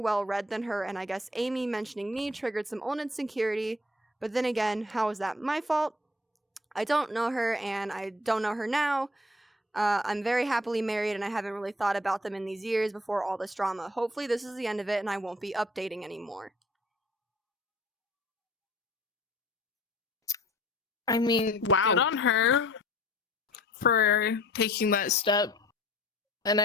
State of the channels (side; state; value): both; normal; correlation 0.53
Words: than her, and I guess Amy mentioning me triggered some old insecurity, but then again, how is that my fault? I don't know her, and I don't know her now. I'm very happily married, and I haven't really thought about them in these years before all this drama. Hopefully this is the end of it, and I won't be updating anymore. I mean, Wow. good on her for taking that step. And